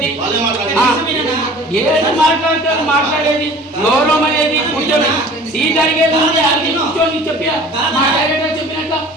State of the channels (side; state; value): both; normal; correlation 0.45